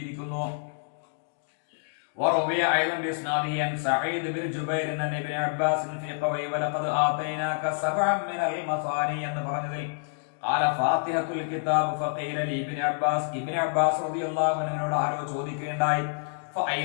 وروي ايضا باسناده عن سعيد بن جبير عن ابن عباس في قوله ولقد آتيناك سبعا من المثاني എന്ന് പറഞ്ഞതിൽ قال فاتحة الكتاب فقيل لي ابن عباس, ഇബ്നു അബ്ബാസ് റളിയല്ലാഹു അൻഹുവിനോട് ആരോ ചോദിക്കുകയുണ്ടായി,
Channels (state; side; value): silent; right; digital silence